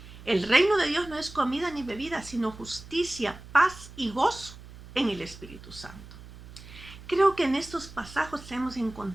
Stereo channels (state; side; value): noise; right; hum, 17 dB below the sound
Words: El reino de Dios no es comida ni bebida, sino justicia, paz y gozo en el Espíritu Santo. Creo que en estos pasajes hemos